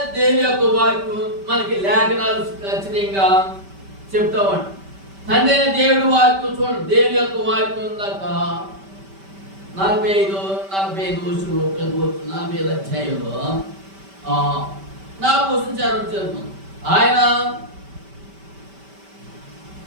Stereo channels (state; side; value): late; left; 5.1 ms